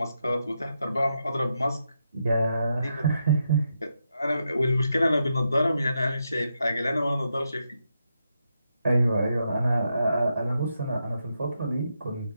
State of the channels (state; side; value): inverted; both; correlation -0.83